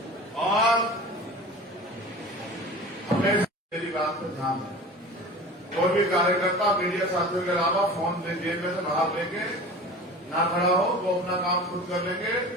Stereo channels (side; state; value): both; normal; correlation 0.37